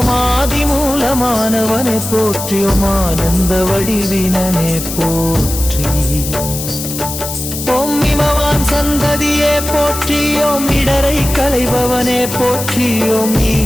ஆதி மூலமானவனே போற்றி. ஓம் ஆனந்த வடிவினனே போற்றி. ஓம் இமவான் சந்ததியே போற்றி. ஓம் இடரை களைபவனே போற்றி. ஓம்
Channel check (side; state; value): left; noise; hiss, 7 dB below the sound